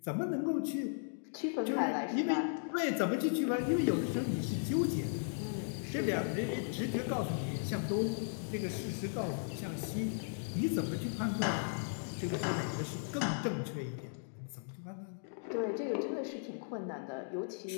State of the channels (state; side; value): silent; right; digital silence